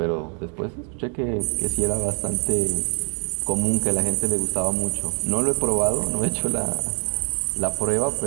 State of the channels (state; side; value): quieter; left; 39.0 dB